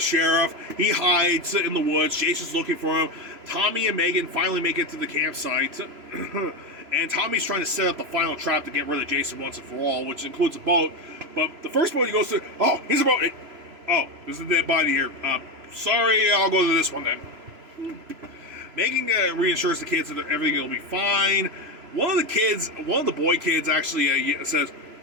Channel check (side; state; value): left; late; 3.0 ms